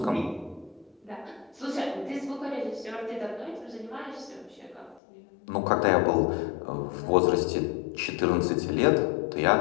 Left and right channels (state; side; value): drops out; right; at 5.0 s